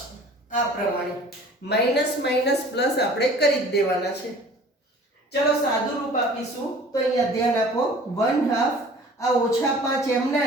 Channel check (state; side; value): normal; both; correlation 0.47